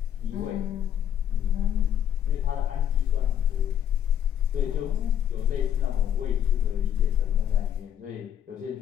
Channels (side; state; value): right; quieter; 9.8 dB